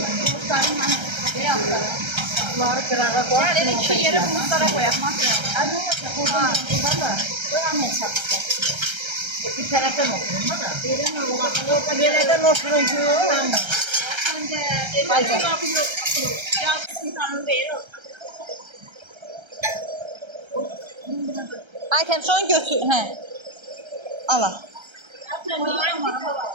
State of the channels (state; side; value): late; left; 1.3 ms